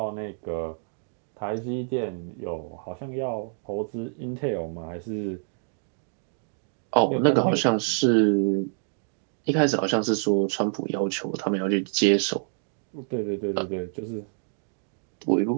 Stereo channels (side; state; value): left; silent; 60 dB below the other